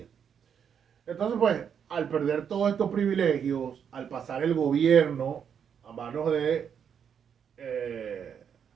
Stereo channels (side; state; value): left; quieter; 7.7 dB